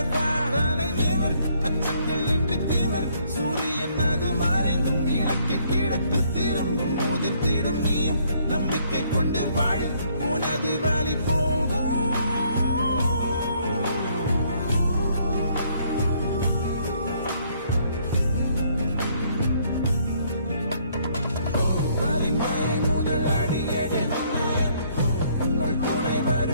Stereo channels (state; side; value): inverted; both; correlation -0.66